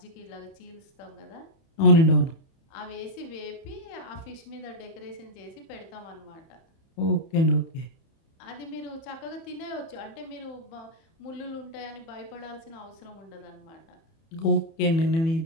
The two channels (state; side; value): late; right; 31 ms